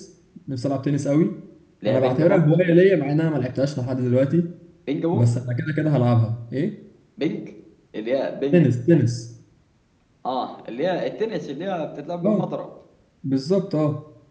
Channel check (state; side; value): identical; both; correlation 1.00